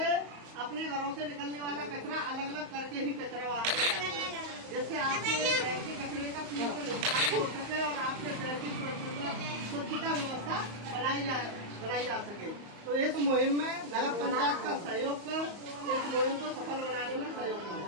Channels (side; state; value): left; late; 34 ms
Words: अपने घरों से निकलने वाला कचरा अलग अलग करके ही कचरा वाहन में डालना है, जिससे आपके शहर के कचरे का पूर्ण निस्तारण हो सके और आपके शहर की स्वच्छता व्यवस्था बनाई जा सके। तो इस मुहिम में नगर पंचायत का सहयोग कर इस मुहिम को सफल बनाने में सहयोग करें।